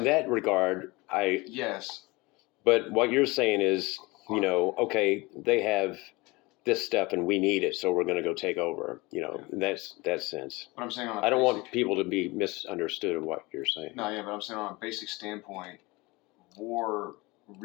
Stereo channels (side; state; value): right; quieter; 23.4 dB